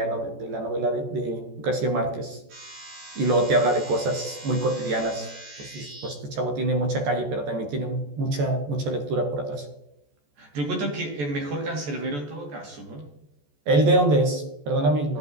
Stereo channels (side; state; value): left; late; 14 ms